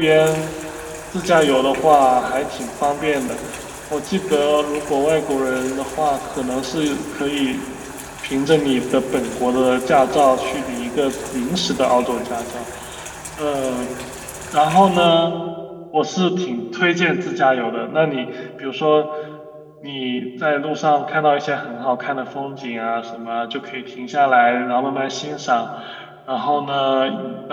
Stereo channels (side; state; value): both; identical; correlation 1.00